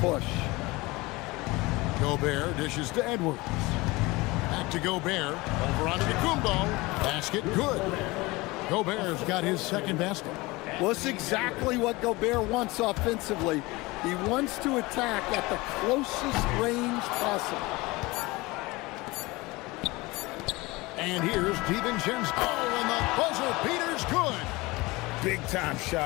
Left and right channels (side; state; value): right; quieter; 22.3 dB